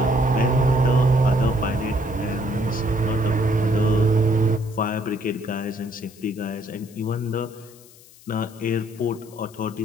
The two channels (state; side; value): noise; left; hiss, 24 dB below the sound